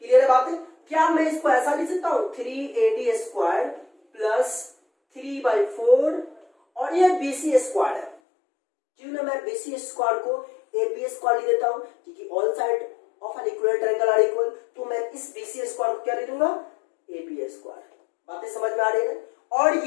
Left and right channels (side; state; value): right; drops out; at 8.2 s